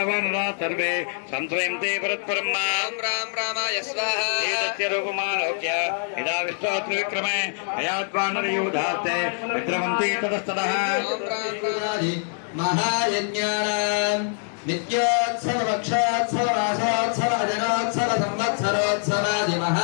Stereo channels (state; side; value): silent; right; 62 dB below the other